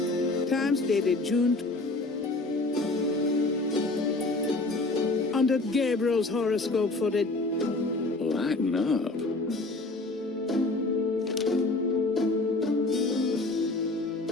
Times dated June... Under Gabriel's horoscope for the... Lighten up.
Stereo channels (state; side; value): quieter; right; 3.0 dB